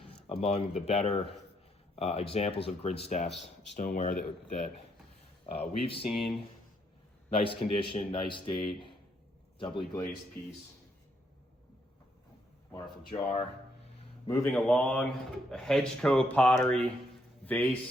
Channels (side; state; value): both; normal; correlation 0.74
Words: among the better examples of Grinstaff's stoneware that we've seen. Nice condition, nice date, doubly glazed piece. Wonderful jar. Moving along, a Hedgecoe pottery